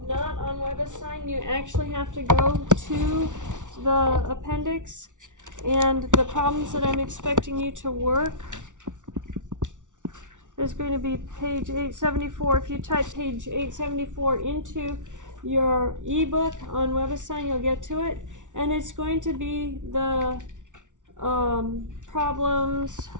not on WebAssign. You actually have to go to the appendix, and the problems that I'm expecting you to work is going to be page 874. If you type page 874 into your ebook on WebAssign, you'll get to it, and it's going to be the problems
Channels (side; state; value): left; late; 0.87 ms